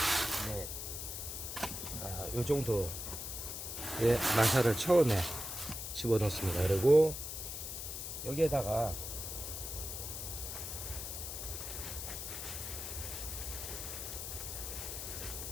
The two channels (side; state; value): left; noise; hiss, 6 dB below the sound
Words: 넷. 요 정도의 마사를 처음에 집어넣습니다. 그리고 여기에다가